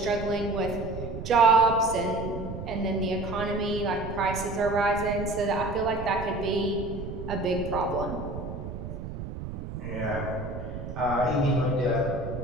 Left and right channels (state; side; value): noise; right; rumble, 8 dB below the sound